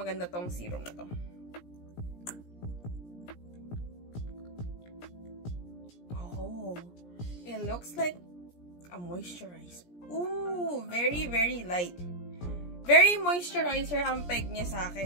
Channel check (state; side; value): late; right; 17 ms